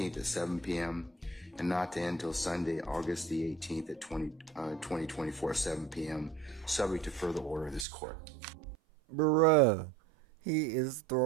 at 7 p.m. and not to end until Sunday, August the 18th at 2024, 7 p.m. subject to further order of this court. Bruh, he is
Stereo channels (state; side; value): drops out; left; at 7.9 s